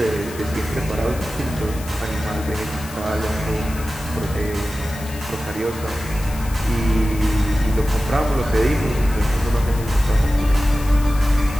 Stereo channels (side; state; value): left; noise; hiss, 16 dB below the sound